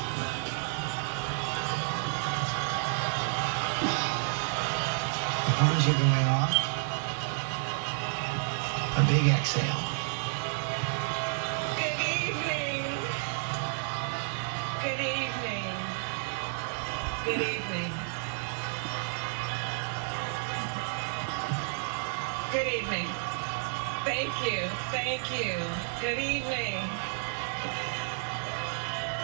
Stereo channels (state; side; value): silent; left; 57 dB below the other